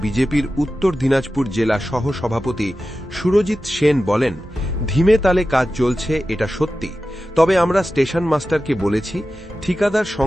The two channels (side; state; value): both; normal; correlation 0.93